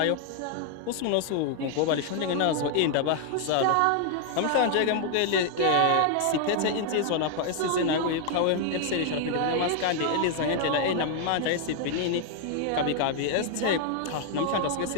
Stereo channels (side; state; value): both; different; correlation 0.00